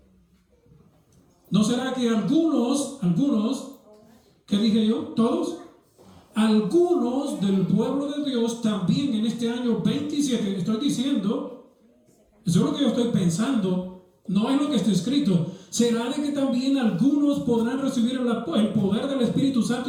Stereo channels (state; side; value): identical; both; correlation 1.00